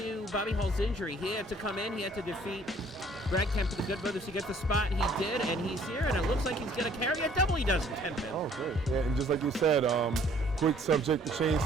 Bobby Hall's injury. He had to come in, he had to defeat Brad Kemp for the Good Brothers to get the spot. He did, and he's here, and it looks like he's going to carry a double. He does in 10 minutes. Oh, great. Yeah, and just like you said, quick subject to change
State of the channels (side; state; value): both; normal; correlation 0.58